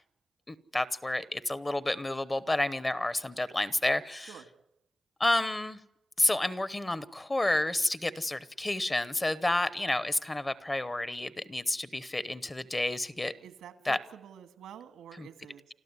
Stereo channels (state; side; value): normal; both; correlation 0.98